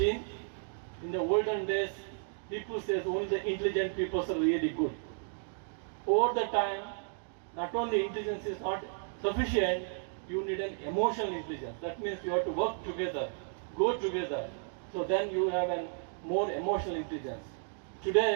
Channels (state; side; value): silent; left; digital silence